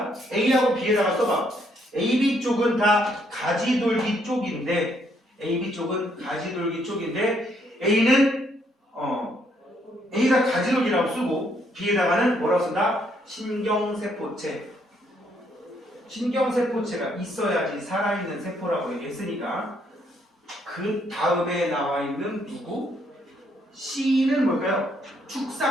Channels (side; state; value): both; normal; correlation 0.71